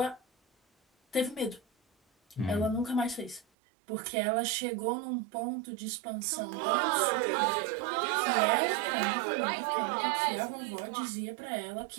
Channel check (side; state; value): left; drops out; at 3.5 s